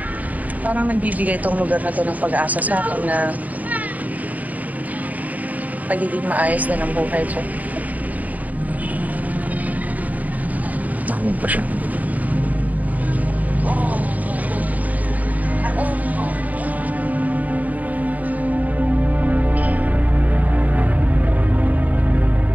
Parang nagbibigay itong lugar na to ng pag-asa sa akin na pagiging maayos na ng buhay ko. Nakamag pa siya.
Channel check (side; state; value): left; late; 0.076 ms